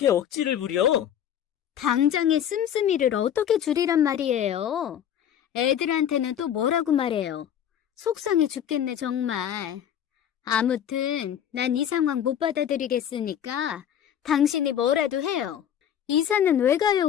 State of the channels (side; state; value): right; quieter; 9.8 dB